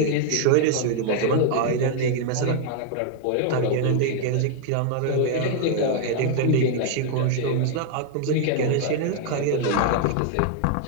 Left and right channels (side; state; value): both; different; correlation 0.00